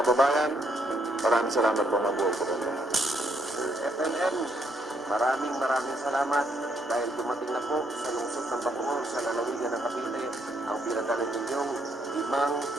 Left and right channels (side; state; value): both; normal; correlation 0.72